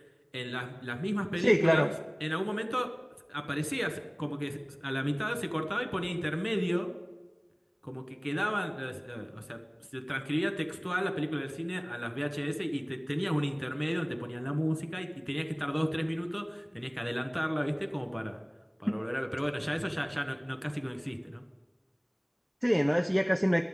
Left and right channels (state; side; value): identical; both; correlation 1.00